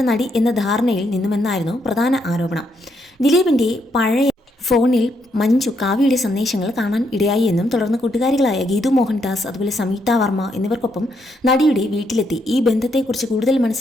നടി എന്ന ധാരണയിൽ നിന്നുമെന്നായിരുന്നു പ്രധാന ആരോപണം. ദിലീപിന്റെ പഴയ ഫോണിൽ മഞ്ജു കാവ്യയുടെ സന്ദേശങ്ങൾ കാണാൻ ഇടയായി എന്നും തുടർന്ന് കൂട്ടുകാരികളായ ഗീതു മോഹൻദാസ്, അതുപോലെ സംയുക്ത വർമ്മ എന്നിവർക്കൊപ്പം നടിയുടെ വീട്ടിലെത്തി ഈ ബന്ധത്തെക്കുറിച്ച് കൂടുതൽ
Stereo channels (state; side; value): normal; both; correlation 0.76